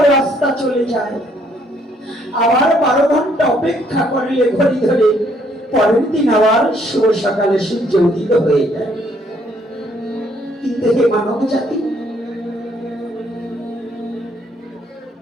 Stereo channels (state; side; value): normal; both; correlation 0.67